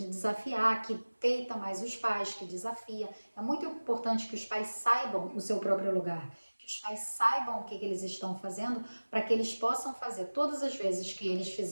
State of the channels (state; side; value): inverted; both; correlation -1.00